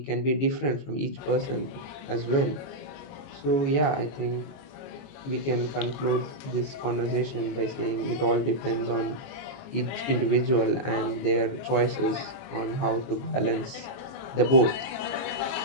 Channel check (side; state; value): right; late; 22 ms